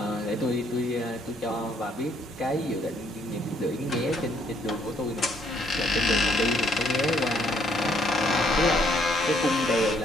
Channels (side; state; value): both; normal; correlation 0.68